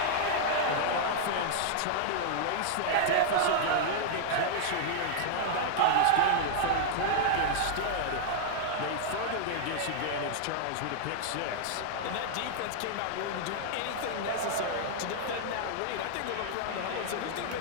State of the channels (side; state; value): both; different; correlation -0.01